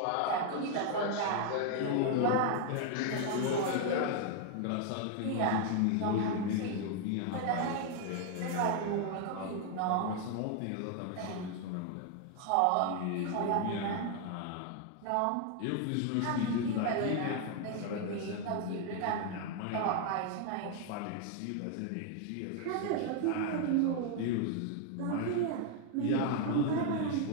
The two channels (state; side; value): different; both; correlation 0.00